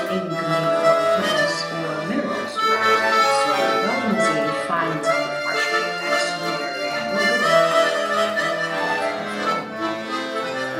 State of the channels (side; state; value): both; identical; correlation 1.00